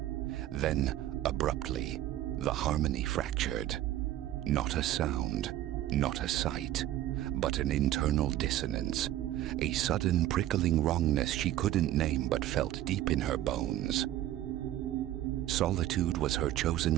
Then, abruptly, the harmony fractured. Not a sound, not a sight, but an internal dissonance, a sudden prickling wrongness she couldn't name but felt deep in her bones. Solitude was her chosen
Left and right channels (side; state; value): left; quieter; 13.5 dB